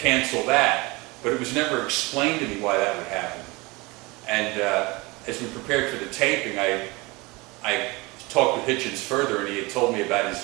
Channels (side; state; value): left; quieter; 24.4 dB